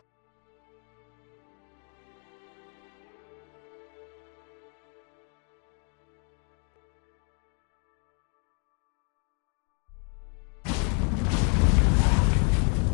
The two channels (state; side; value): quieter; right; 38.7 dB